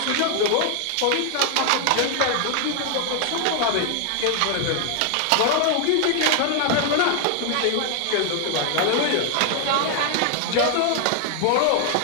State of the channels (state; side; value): different; both; correlation 0.00